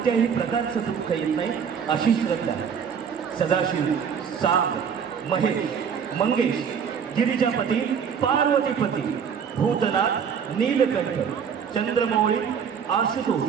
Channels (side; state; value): left; quieter; 7.1 dB